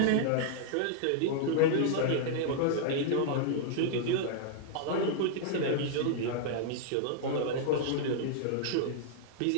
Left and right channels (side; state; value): both; different; correlation -0.01